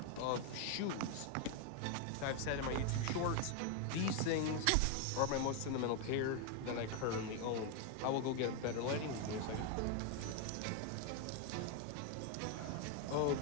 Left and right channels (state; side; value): different; both; correlation 0.01